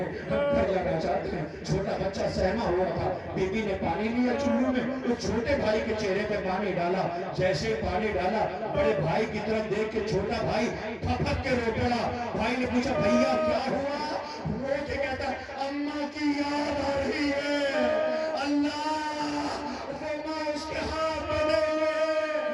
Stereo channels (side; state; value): both; identical; correlation 1.00